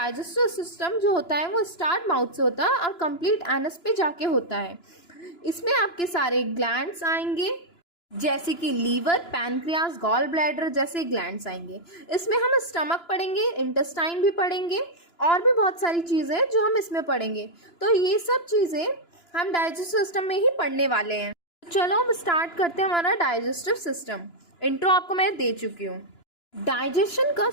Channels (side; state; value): right; late; 2.9 ms